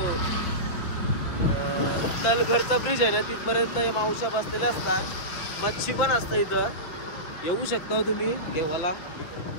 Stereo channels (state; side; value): late; right; 5.6 ms